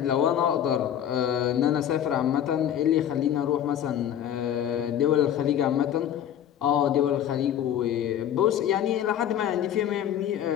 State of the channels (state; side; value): quieter; right; 10.3 dB